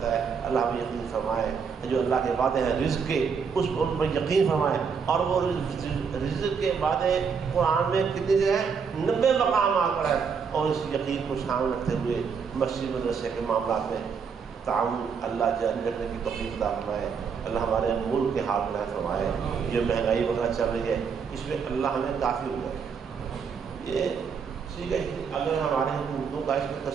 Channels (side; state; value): left; quieter; 6.1 dB